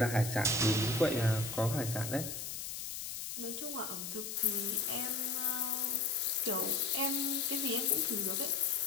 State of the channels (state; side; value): noise; left; hiss, 6 dB below the sound